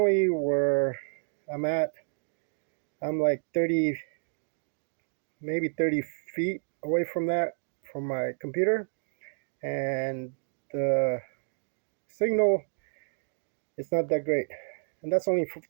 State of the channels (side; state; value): left; silent; digital silence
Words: where I'm at, I'm like 30, maybe 30 feet away from that, from my computer, and the signal is not that great. And that's only